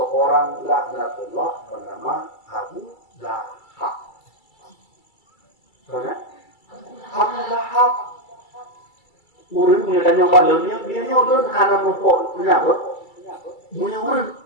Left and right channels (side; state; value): right; late; 2.3 ms